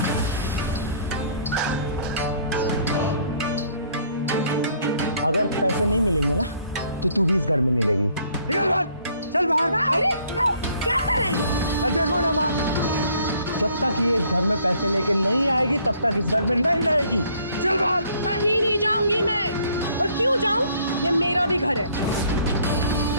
अगर पैसे नहीं मिलेंगे ना तो तू भी इस घर में नहीं रहेगी। निकल बाहर, चल बाहर। अरे क्या कर रही है? देखो ना माँ, जब तक ये इस घर में पैसे लेके नहीं आएगी तब तक इस घर में नहीं रहेगी। चल बाहर। कहीं नहीं जाऊंगी मैं, और क्यों जाऊं? ये मेरा भी घर है।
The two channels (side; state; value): both; inverted; correlation -0.61